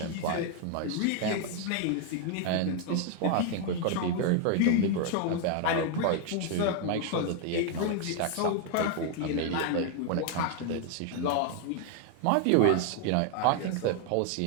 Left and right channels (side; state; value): both; different; correlation 0.00